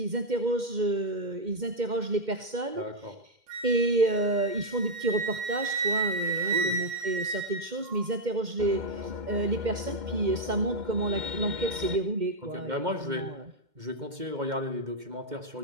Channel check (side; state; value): left; late; 2.1 ms